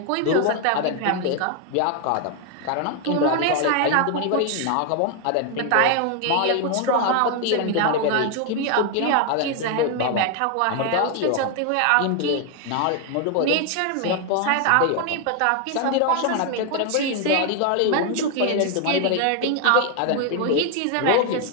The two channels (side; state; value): both; different; correlation 0.01